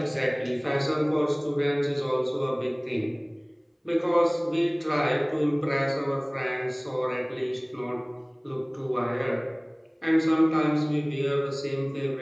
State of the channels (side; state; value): both; identical; correlation 1.00